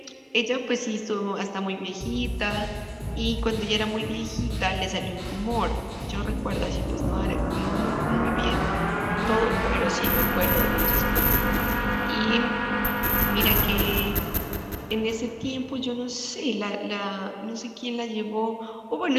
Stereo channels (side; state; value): both; identical; correlation 1.00